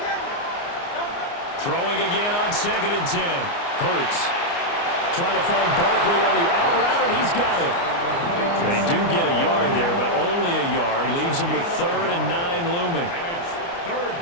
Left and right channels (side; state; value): right; late; 29 ms